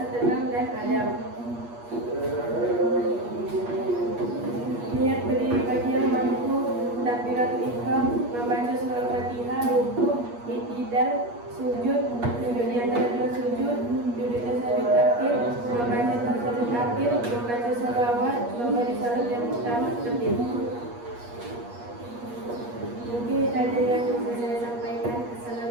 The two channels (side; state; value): left; late; 8.4 ms